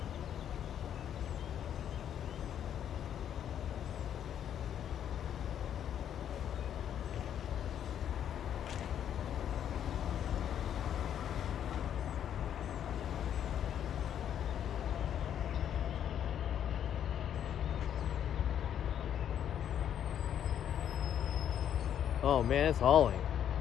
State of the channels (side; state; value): right; quieter; 9.6 dB